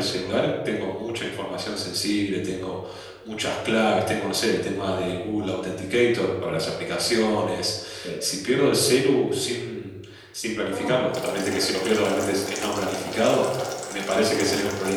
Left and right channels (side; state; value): both; identical; correlation 1.00